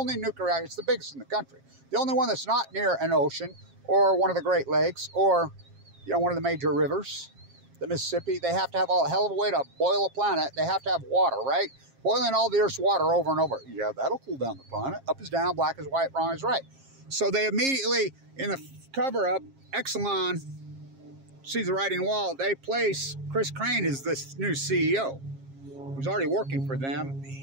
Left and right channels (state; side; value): late; left; 7.4 ms